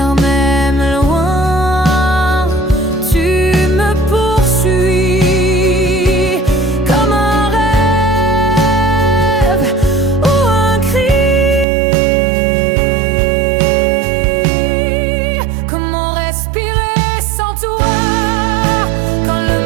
même loin, tu me poursuis comme un rêve ou un cri. Comment respirer sans toi, quand le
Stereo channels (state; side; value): drops out; left; at 11.7 s